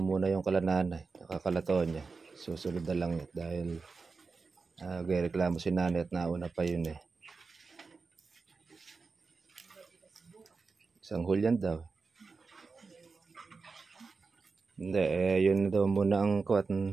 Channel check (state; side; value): quieter; left; 4.5 dB